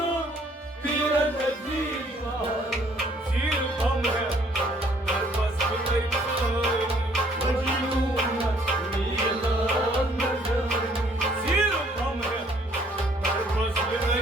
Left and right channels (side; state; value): both; normal; correlation 0.62